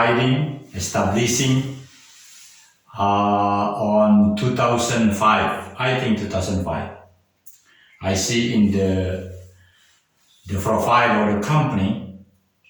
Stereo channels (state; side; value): identical; both; correlation 1.00